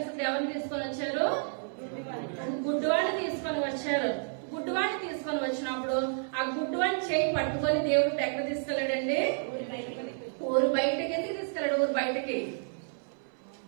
ఎవరిని తీసుకొని వచ్చారు, గుడ్డివాడిని తీసుకొని వచ్చారు. గుడ్డివాడిని తీసుకొని వచ్చినప్పుడు ఆ గుడ్డివాడిని చేయి పట్టుకొని దేవుడు ఎక్కడ తీసుకెళ్లాడండి, ఊరు బయటకి. ఎందుకు తీసుకెళ్లాడు ఊరు బయటకి,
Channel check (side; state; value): left; silent; 57 dB below the other